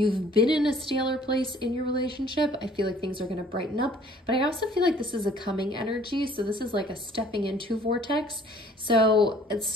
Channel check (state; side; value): normal; both; correlation 0.55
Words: been in a staler place in your relationship, I feel like things are going to brighten up. But I also feel like this is a coming energy. So this is like a stepping into vortex. So